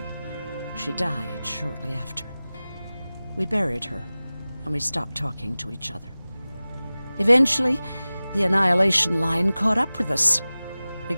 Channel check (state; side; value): inverted; both; correlation -0.97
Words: She died shortly after. We buried her, and we stopped talking to each other. Eventually, the Annihilation Line caught up with us. We